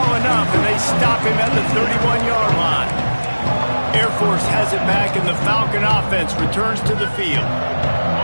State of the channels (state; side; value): inverted; both; correlation -1.00